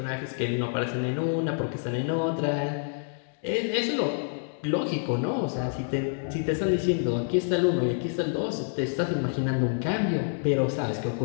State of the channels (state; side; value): silent; right; digital silence